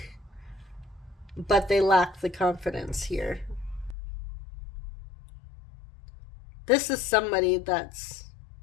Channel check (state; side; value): drops out; right; at 4.0 s